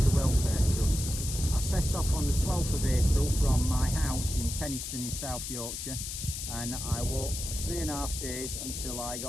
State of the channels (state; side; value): noise; left; hiss, 6 dB below the sound